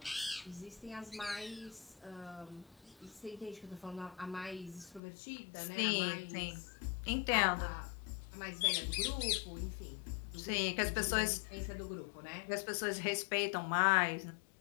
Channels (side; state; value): right; drops out; at 5.0 s